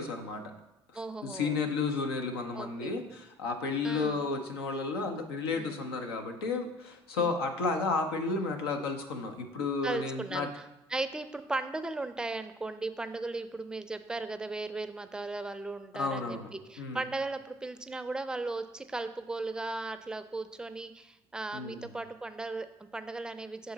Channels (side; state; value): both; normal; correlation 0.51